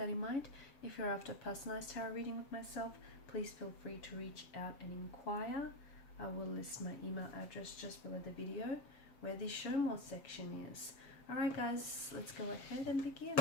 in mind. If you're after a personalized tarot reading with myself, please feel free to reach out and inquire. I will list my email address just below the video where the show more section is. Alright guys, let's go ahead and begin.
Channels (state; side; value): late; right; 7.1 ms